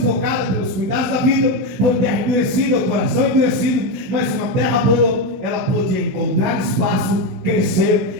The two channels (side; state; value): left; late; 16 ms